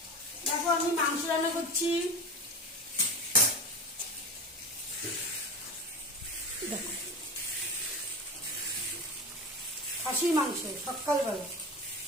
দেখো আমি মাংস রান্না করছি। দেখো খাসির মাংস সকালবেলা,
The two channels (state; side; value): normal; both; correlation 0.26